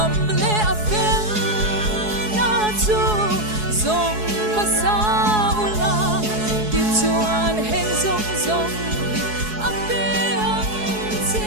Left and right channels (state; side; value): late; left; 4.7 ms